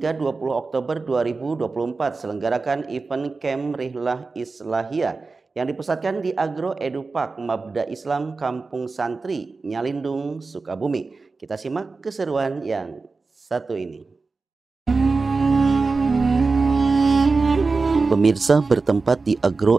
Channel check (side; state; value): left; quieter; 4.0 dB